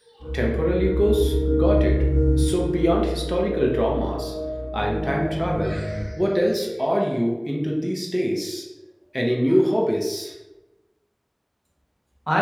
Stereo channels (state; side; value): identical; both; correlation 1.00